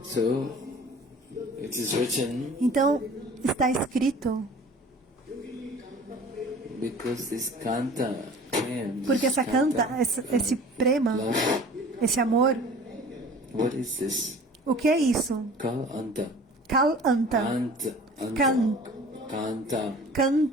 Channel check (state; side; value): normal; both; correlation 0.45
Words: Então, está escrito, porque essa canta, esse prema, esse amor, o que é isso? Kal Anta.